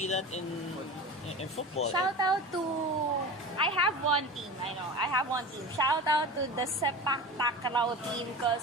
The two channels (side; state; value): both; normal; correlation 0.31